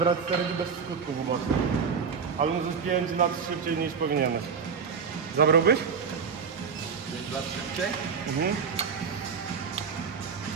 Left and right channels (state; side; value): quieter; left; 6.0 dB